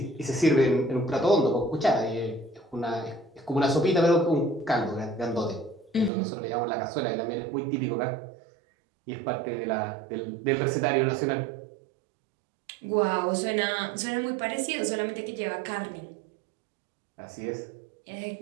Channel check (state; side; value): drops out; left; at 6.1 s